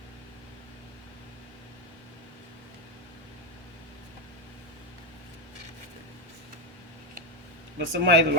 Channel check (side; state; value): both; normal; correlation 0.05